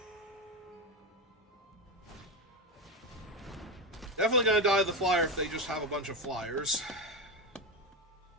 Definitely going to die to the flyer if they just have a bunch of flyers.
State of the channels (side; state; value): both; normal; correlation 0.14